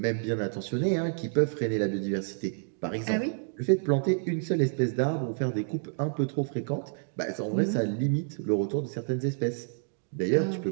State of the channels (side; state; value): left; silent; digital silence